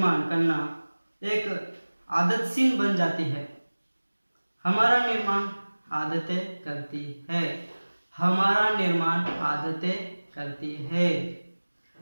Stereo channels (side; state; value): both; inverted; correlation -1.00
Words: करना एक आदतशील बन जाती है। हमारा निर्माण आदतें करती है, हमारा निर्माण आदतें करती है।